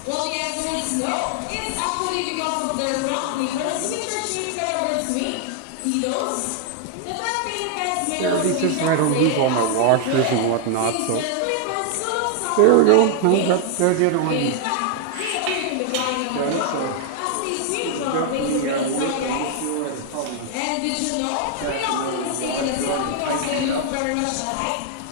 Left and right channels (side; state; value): both; different; correlation 0.00